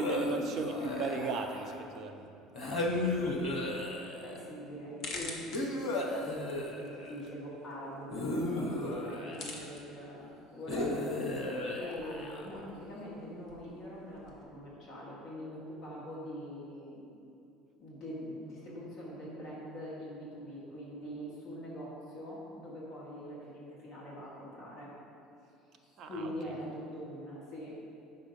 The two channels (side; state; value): both; normal; correlation 0.35